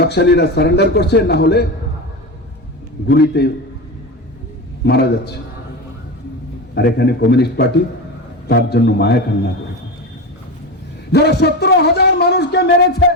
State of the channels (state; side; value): normal; both; correlation 0.22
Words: সারেন্ডার করছে, না হলে গুলিতে মারা যাচ্ছে। আর এখানে কমিউনিস্ট পার্টি তার জন্য মায়া কান্না করে, যারা 17,000 মানুষকে মেরেছে,